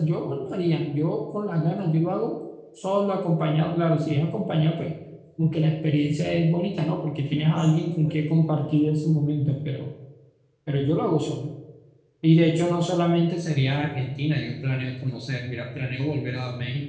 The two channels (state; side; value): identical; both; correlation 1.00